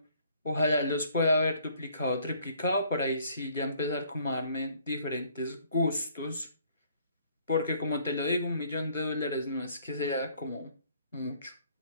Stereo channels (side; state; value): both; inverted; correlation -0.60